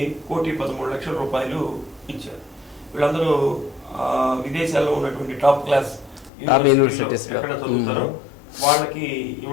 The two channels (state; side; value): drops out; right; at 6.3 s